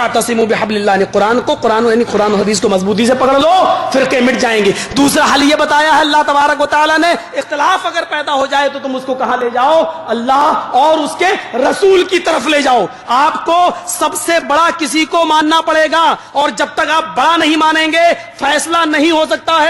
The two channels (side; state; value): both; identical; correlation 1.00